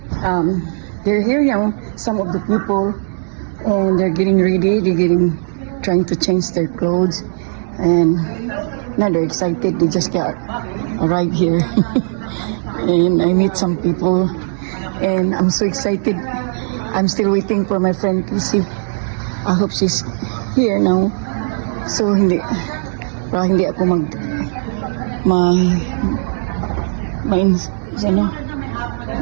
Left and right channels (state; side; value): silent; left; digital silence